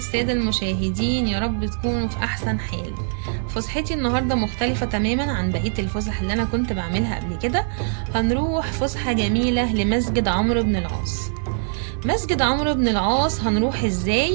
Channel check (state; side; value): silent; left; 59 dB below the other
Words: المشاهدين، يا رب تكونوا في أحسن حال. فسحتي النهاردة مختلفة تماما عن بقية الفسح اللي أنا كنت بعملها قبل كده. هنروح فسحة جميلة لمسجد عمرو بن العاص. مسجد عمرو بن العاص هنروح